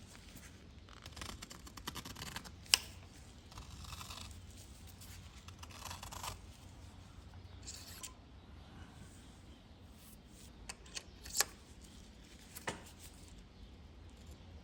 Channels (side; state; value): both; identical; correlation 1.00